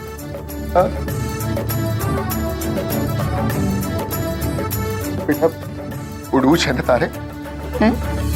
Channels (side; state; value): both; identical; correlation 1.00